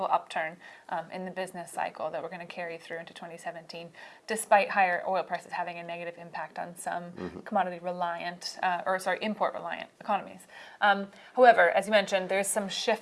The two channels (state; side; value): identical; both; correlation 1.00